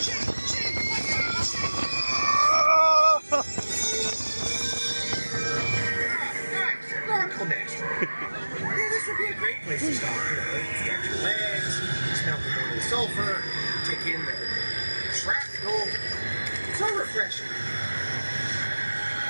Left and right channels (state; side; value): inverted; both; correlation -1.00